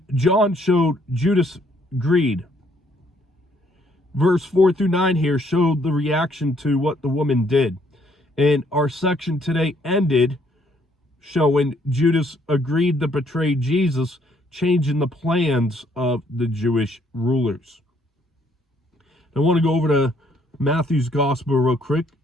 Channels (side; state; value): both; normal; correlation 0.67